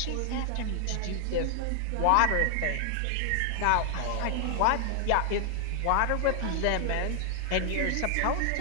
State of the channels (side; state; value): both; different; correlation 0.00